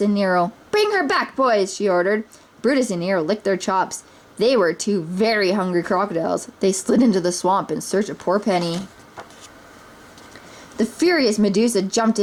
Nero. Bring her back, boys, she ordered. Brutus and Nero licked their chops. They were 2 very hungry crocodiles. They slid into the swamp in search of poor Penny. The furious Medusa jumped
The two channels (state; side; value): identical; both; correlation 1.00